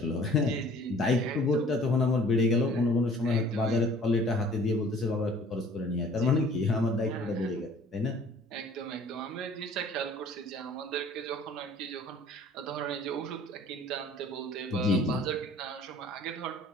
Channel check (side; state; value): both; normal; correlation 0.51